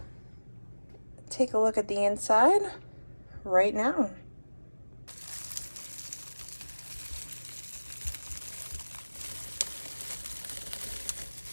take a look at the inside right now.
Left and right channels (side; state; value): both; inverted; correlation -1.00